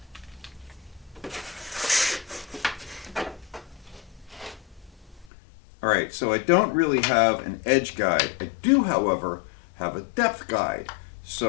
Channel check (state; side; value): drops out; right; at 5.3 s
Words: Alright, so I don't really have an edge guide. I do, however, have a depth guide.